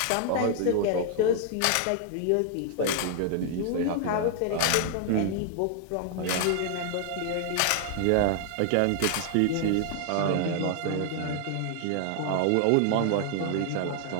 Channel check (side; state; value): both; different; correlation 0.00